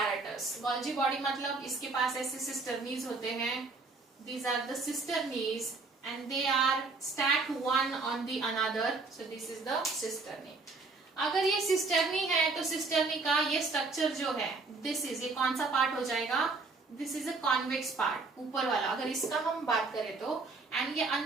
Golgi body मतलब इसके पास ऐसे cisternies होते हैं. These are the cisternies, and they are stacked one on the another. So this is the cisternie. अगर ये cisternie है तो cisternie का ये structure जो है, this is, ये कौन सा part हो जाएगा? This is a convex part, ऊपर वाला. अगर इसका हम बात करें तो, and ये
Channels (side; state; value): left; quieter; 3.9 dB